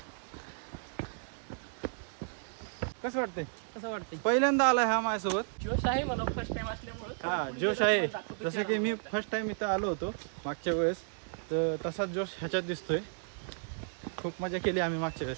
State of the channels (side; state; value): left; silent; digital silence